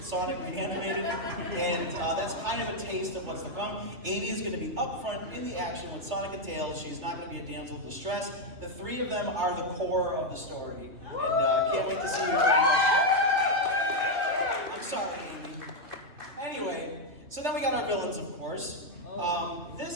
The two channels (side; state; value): left; late; 3.2 ms